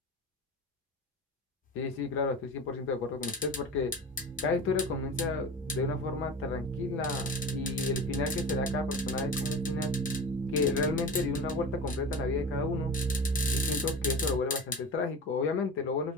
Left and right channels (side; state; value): both; normal; correlation 0.32